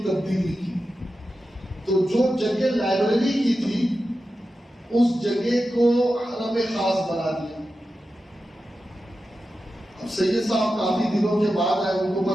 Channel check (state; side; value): normal; both; correlation 0.91